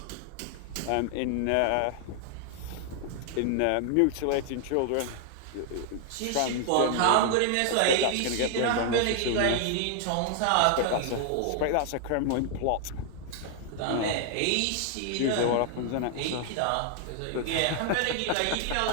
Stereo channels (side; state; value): both; different; correlation 0.00